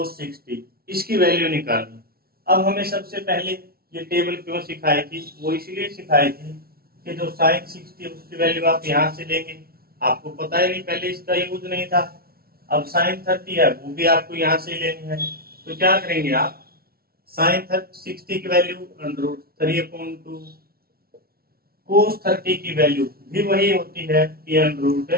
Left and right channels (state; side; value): late; left; 0.44 ms